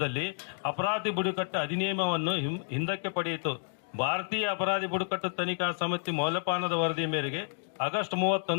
ಅಪರಾಧಿ ಬುಡಕಟ್ಟು ಅಧಿನಿಯಮವನ್ನು ಹಿಂದಕ್ಕೆ ಪಡೆಯಿತು. ಭಾರತೀಯ ಅಪರಾಧಿ ಬುಡಕಟ್ಟು ತನಿಖಾ ಸಮಿತಿ ಮೌಲ್ಯಪಾನದ ವರದಿ ಮೇರೆಗೆ ಆಗಸ್ಟ್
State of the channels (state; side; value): silent; right; digital silence